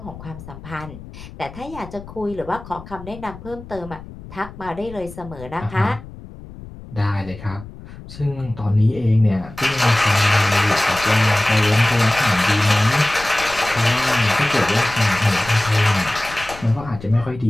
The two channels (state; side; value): noise; left; rumble, 16 dB below the sound